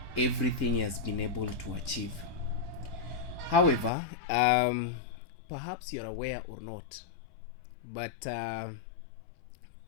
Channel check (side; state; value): right; drops out; at 3.9 s